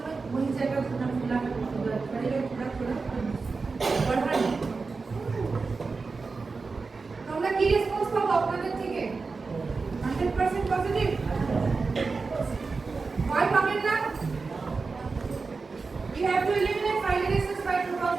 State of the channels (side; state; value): left; quieter; 4.3 dB